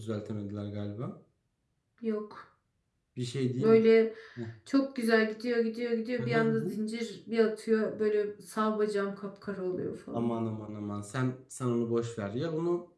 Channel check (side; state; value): both; identical; correlation 1.00